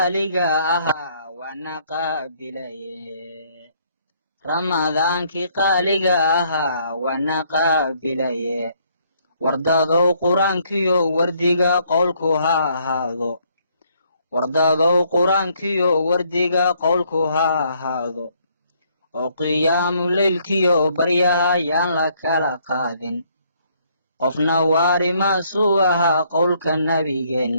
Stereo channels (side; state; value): both; inverted; correlation -0.68